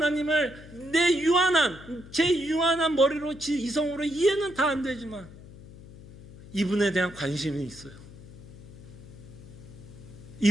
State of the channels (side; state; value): left; noise; hum, 18 dB below the sound